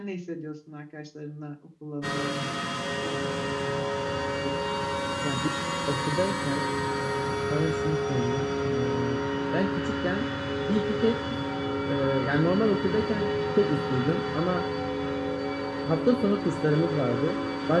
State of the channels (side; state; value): both; identical; correlation 1.00